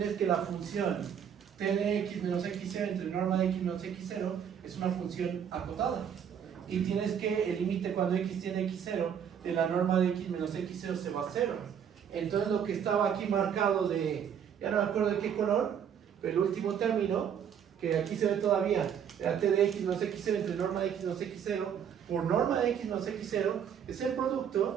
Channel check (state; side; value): quieter; left; 8.3 dB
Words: que la función t de x menos x0 entre norma de x menos x0 es una función acotada. Y tienes que el límite cuando x tiene x0 de la norma de x menos x0 se va a 0. Entonces lo que estaba aquí marcado de, ya no me acuerdo de qué color, pero el último término, que aquí se ve todavía, la t de x menos x0 entre norma de x menos x0 por norma de x menos x0, es el